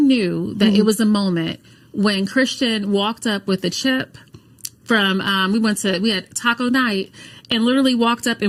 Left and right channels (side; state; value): both; identical; correlation 1.00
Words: that it was a moment when Christian walked up with a chip from, we had taco night, and literally walked up